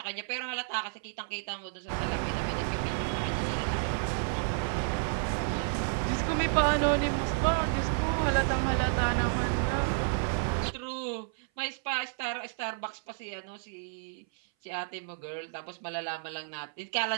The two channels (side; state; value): left; silent; 57 dB below the other